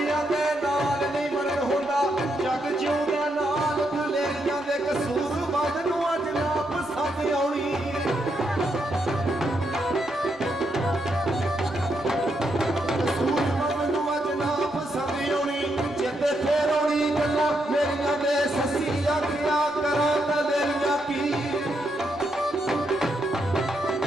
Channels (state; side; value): normal; both; correlation 0.80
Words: दे नाल नहीं मरण होंदा जग जिउंदा नाल दुलेरियां दे कसूर बद नूं अज ना पसंद आउणी कसूर बद नूं अज ना पसंद आउणी जिते फेर आउणी गल्लां मेरियां दे सस्सी आखिया करां तां देरियां की